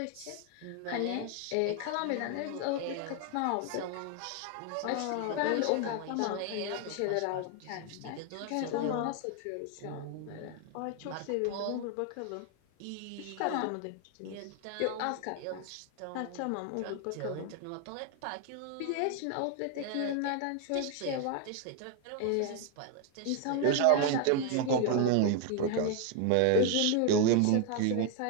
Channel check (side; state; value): both; different; correlation 0.01